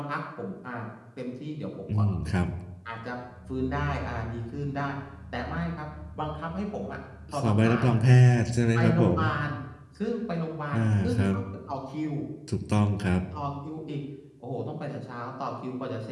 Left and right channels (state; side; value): identical; both; correlation 1.00